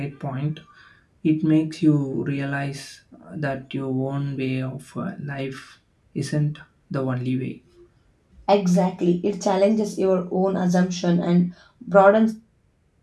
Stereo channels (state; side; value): identical; both; correlation 1.00